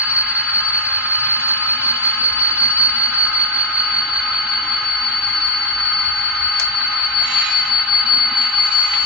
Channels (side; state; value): both; normal; correlation 0.11